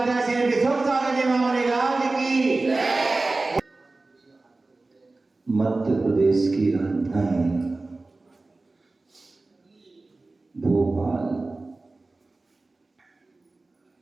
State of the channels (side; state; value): left; quieter; 3.3 dB